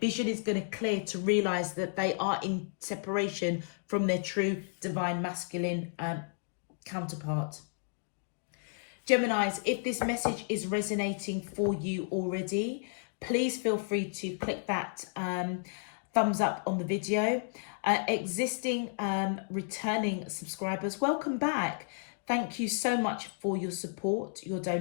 is going to clear to realize that they are in separation from their true divine masculine counterpart. Geminis, if this message is resonating for you already, please feel free to click that thumbs up on the video. Existing returning subscribers, welcome back. Thank you so much for your support, your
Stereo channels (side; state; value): right; silent; digital silence